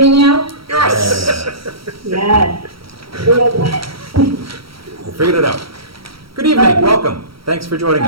now? Yes. Yes. We figured it out. Good evening, welcome. Thanks for joining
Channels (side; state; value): left; late; 0.75 ms